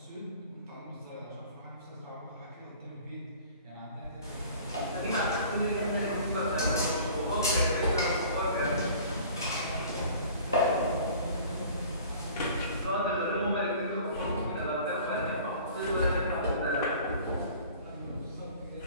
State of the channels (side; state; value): both; inverted; correlation -0.47